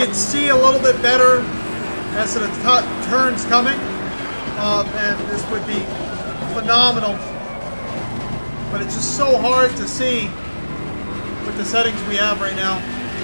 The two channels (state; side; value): inverted; both; correlation -1.00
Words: see a little bit better as to the turns coming, man, this would be phenomenal. But it's just so hard to see with the settings we have right now.